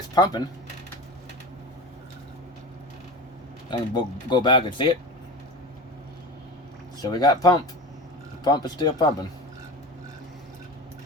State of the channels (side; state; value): both; normal; correlation 0.30